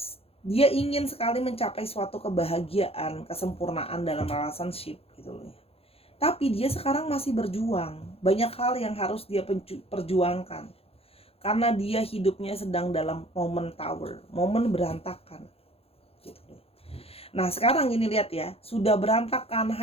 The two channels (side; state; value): right; late; 0.28 ms